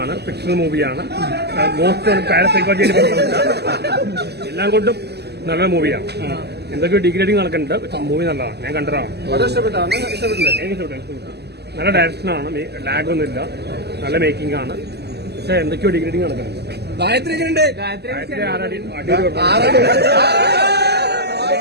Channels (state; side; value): late; left; 0.48 ms